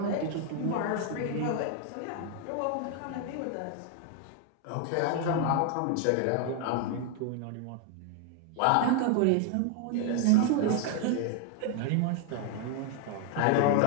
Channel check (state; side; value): different; both; correlation 0.00